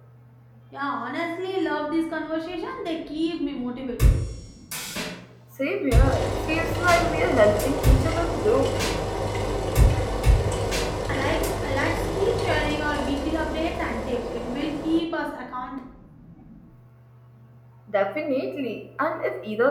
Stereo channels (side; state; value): both; identical; correlation 1.00